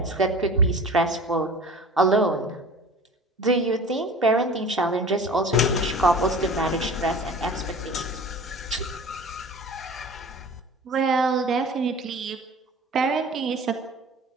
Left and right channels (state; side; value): normal; both; correlation 0.40